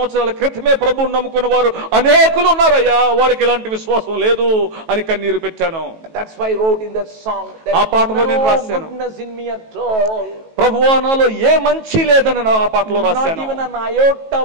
క్రితమే ప్రభువును నమ్ముకున్న వారు అనేకులు ఉన్నారయ్యా, వారికి ఇలాంటి విశ్వాసం లేదు అని కన్నీరు పెట్టాను. That's why I wrote in that song that ఆ పాటలో నేను రాశాను, goodness in me at all. ప్రభువా, నాలో ఏ మంచి లేదని ఆ పాటలో రాశాను. Not even an iota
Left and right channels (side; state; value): left; late; 18 ms